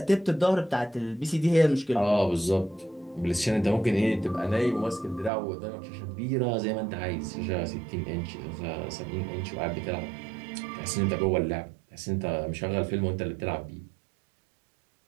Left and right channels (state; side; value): drops out; left; at 5.3 s